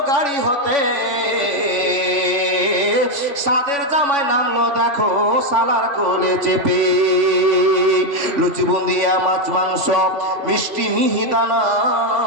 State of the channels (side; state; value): left; late; 3.5 ms